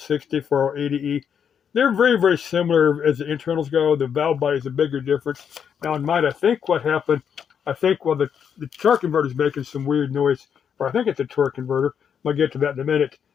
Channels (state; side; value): quieter; right; 7.7 dB